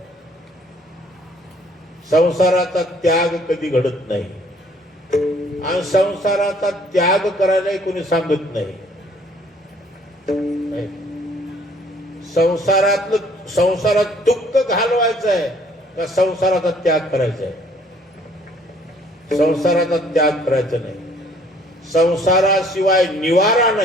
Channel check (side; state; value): both; normal; correlation 0.59